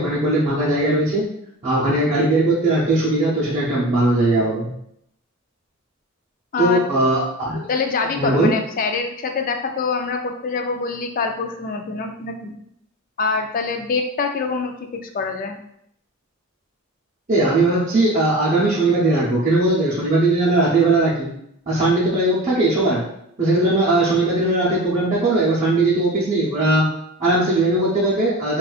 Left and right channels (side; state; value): both; normal; correlation 0.31